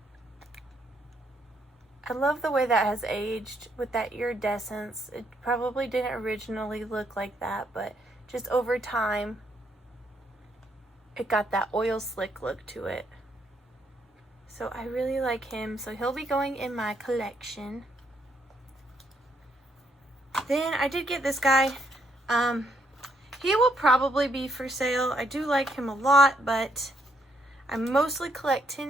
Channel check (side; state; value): both; normal; correlation 0.74